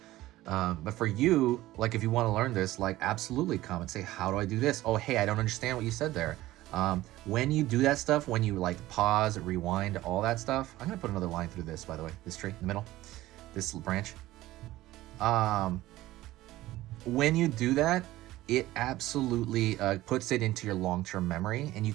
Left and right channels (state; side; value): quieter; left; 16.4 dB